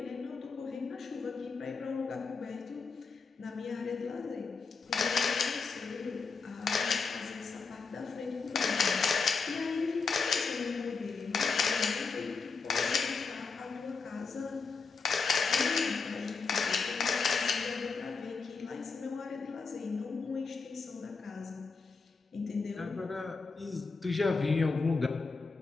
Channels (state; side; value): quieter; right; 4.8 dB